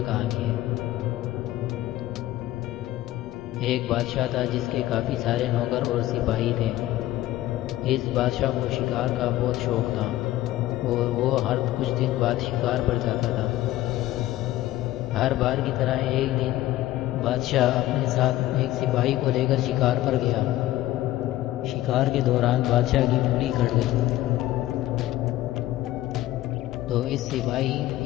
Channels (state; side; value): quieter; right; 15.2 dB